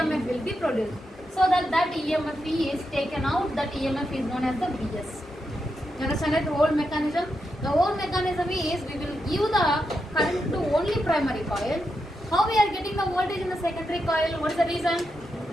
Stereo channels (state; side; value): normal; both; correlation 0.85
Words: will be produced. So that EMF is taken out, that EMF is known as the Vs. You understand that whole mechanism? The whole mechanism is we will give the current to only primary coil. How we are getting the voltage in the secondary coil? What is the reason?